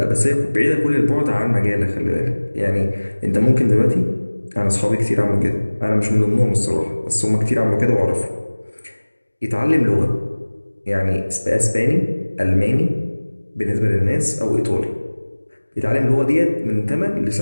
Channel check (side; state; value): both; inverted; correlation -1.00